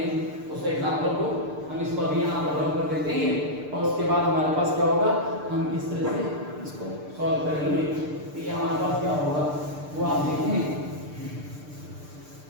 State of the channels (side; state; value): left; late; 6.7 ms